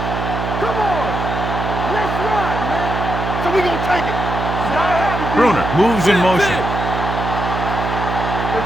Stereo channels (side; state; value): right; noise; hum, 3 dB below the sound